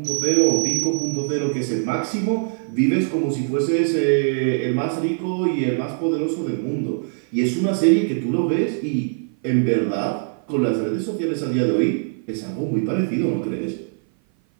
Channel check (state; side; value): silent; left; 57 dB below the other